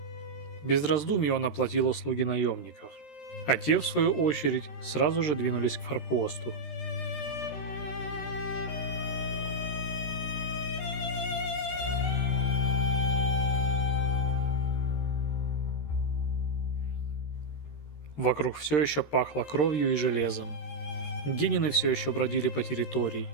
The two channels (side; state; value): right; late; 13 ms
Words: Без раздумий он оплатил услуги наемников, а те, в свою очередь, сразу же двинулись к форпосту. Вокруг все еще пахло кровью и железом. Генины все еще бродили по территории.